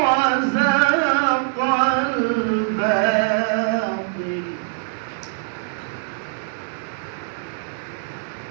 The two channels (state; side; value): silent; left; digital silence